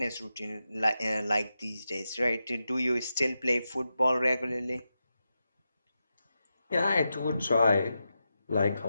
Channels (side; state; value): both; inverted; correlation -0.89